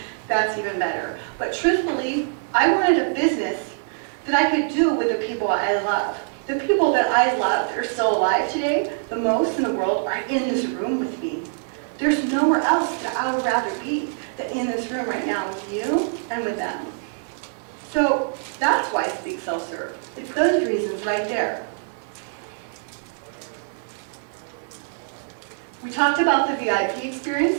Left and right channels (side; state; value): left; silent; 63 dB below the other